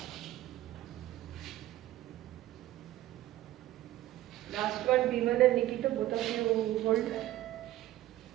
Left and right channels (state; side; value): quieter; left; 14.9 dB